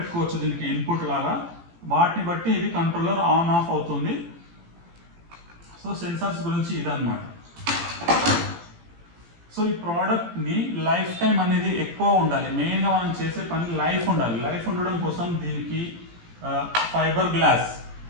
దీనికి ఇన్పుట్ లాగా. వాటిని బట్టి ఇది కంట్రోలర్ ఆన్ ఆఫ్ అవుతుంది. సో సెన్సార్స్ గురించి ఇదన్నమాట. సో ఈ ప్రోడక్ట్ని లైఫ్ టైం అనేది ఎక్కువ ఉండాలి. మెయిన్గా మనం చేసే పని లైఫ్ ఉండాలి. లైఫ్ ఉండడం కోసం దీనికి ఫైబర్ గ్లాస్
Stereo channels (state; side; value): late; left; 18 ms